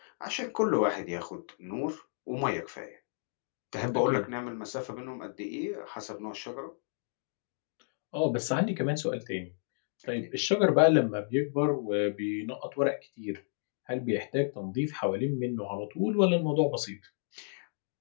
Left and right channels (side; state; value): right; silent; digital silence